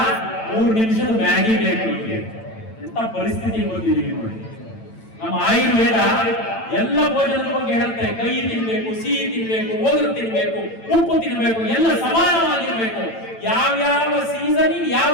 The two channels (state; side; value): late; right; 9.0 ms